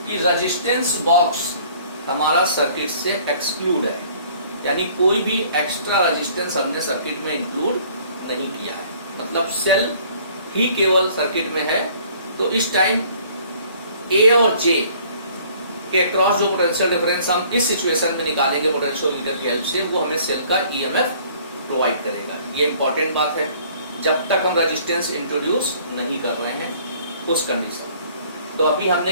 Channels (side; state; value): both; inverted; correlation -0.56